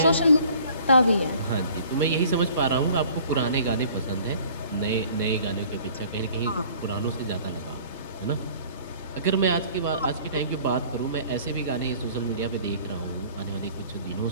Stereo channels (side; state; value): both; inverted; correlation -0.52